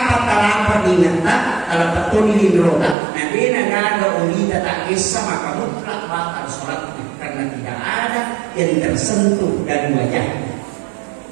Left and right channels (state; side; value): drops out; left; at 3.0 s